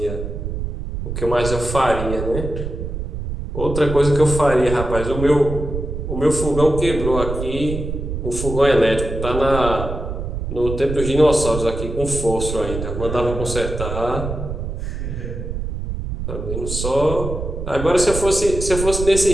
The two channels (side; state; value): right; noise; rumble, 5 dB below the sound